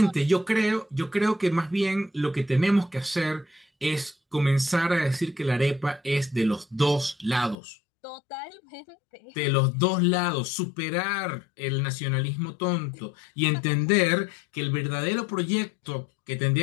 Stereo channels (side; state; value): right; drops out; at 7.6 s